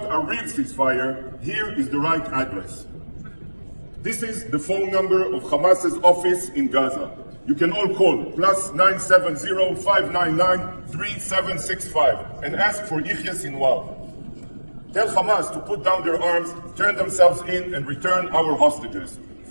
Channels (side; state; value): both; inverted; correlation -1.00